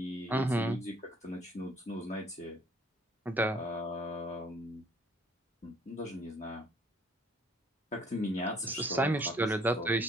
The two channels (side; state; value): both; normal; correlation 0.60